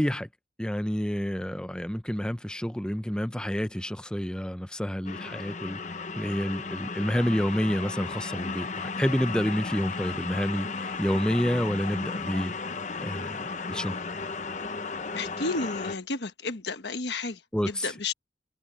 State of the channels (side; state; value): both; normal; correlation 0.76